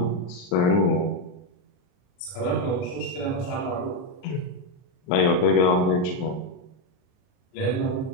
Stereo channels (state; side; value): late; right; 39 ms